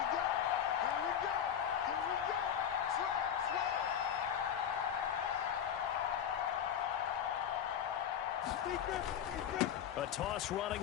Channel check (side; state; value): right; quieter; 9.1 dB